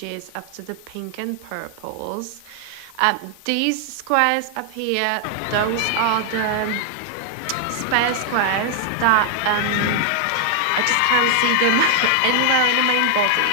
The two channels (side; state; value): both; different; correlation 0.00